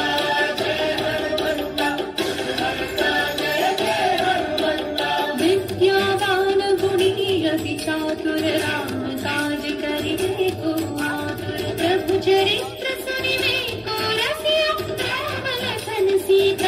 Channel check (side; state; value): both; identical; correlation 1.00